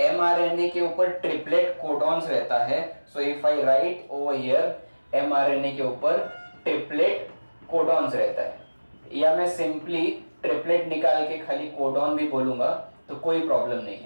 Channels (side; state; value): both; inverted; correlation -1.00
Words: के ऊपर ट्रिपलेट कोडॉन्स रहता है, so if I right over here mRNA के ऊपर ट्रिपलेट कोडॉन्स रहता है, या मैं सिंपली ट्रिपलेट निकाल के खाली कोडॉन भी बोलूंगा तो कोई प्रॉब्लम नहीं